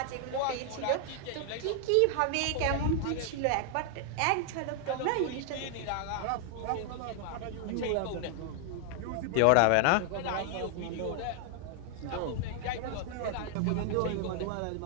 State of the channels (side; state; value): both; different; correlation 0.00